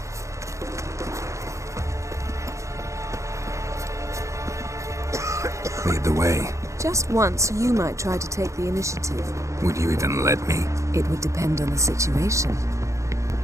Lead the way. Just once, you might try to take the initiative. Would you even let me? It would depend on the situation.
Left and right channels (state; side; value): late; left; 0.15 ms